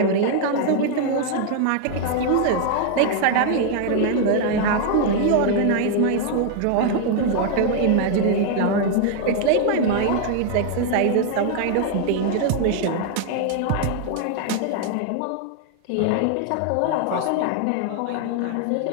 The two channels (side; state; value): both; different; correlation 0.00